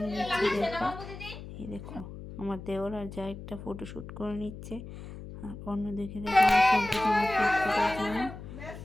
নিচ্ছি। দেখো এই দেখো আমার দেওর আর যা একটা ফটোশ্যুট করে নিচ্ছে। আর অন্যদিকে দেখো আমার সন্তান আমার কেক কাটার জন্য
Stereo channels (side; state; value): left; noise; hum, 12 dB below the sound